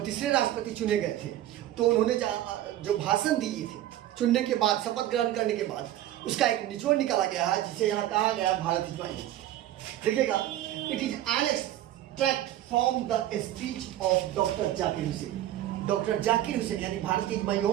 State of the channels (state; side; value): quieter; left; 13.2 dB